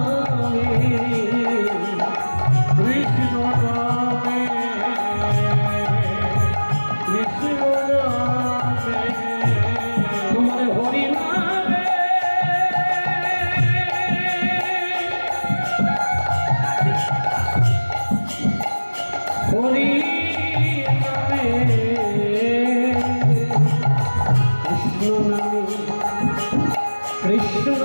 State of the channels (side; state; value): both; inverted; correlation -1.00